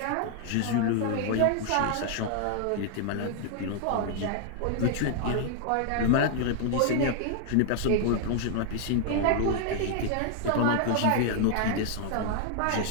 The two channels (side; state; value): both; different; correlation 0.00